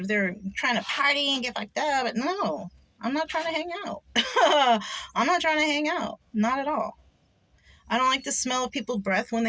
they're trying to party and get fucked up, but no, I'm not trying to hang out. I'm not trying to hang out. Not at all. I don't like the smell of people's breath when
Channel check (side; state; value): both; identical; correlation 1.00